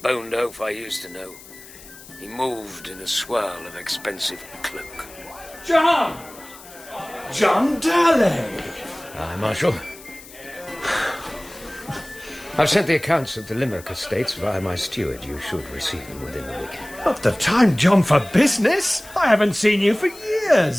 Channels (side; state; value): left; noise; hiss, 19 dB below the sound